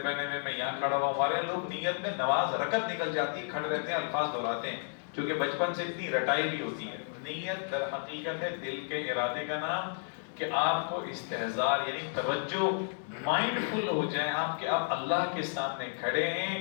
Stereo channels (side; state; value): right; silent; digital silence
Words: ہوئے، میں یہاں کھڑا ہوا ہوں۔ ہمارے لوگ نیت میں نماز رکعت نکل جاتی ہے، کھڑے رہتے ہیں، الفاظ دہراتے ہیں، کیونکہ بچپن سے اتنی رٹائی بھی ہوتی ہے۔ نیت در حقیقت ہے دل کے ارادے کا نام، کہ آپ کو استحضار یعنی توجہ، مائنڈ فل ہو جائیں آپ کہ آپ اللہ کے سامنے کھڑے